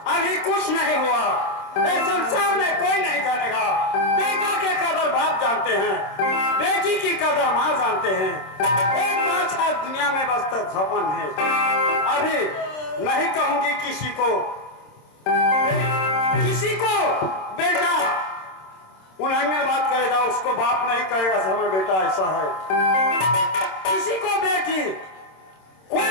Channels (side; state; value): right; late; 26 ms